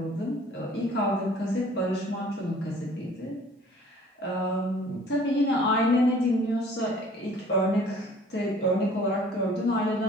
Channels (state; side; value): normal; both; correlation 0.52